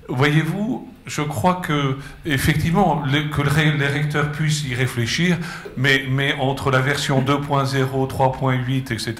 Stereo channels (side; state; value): both; identical; correlation 1.00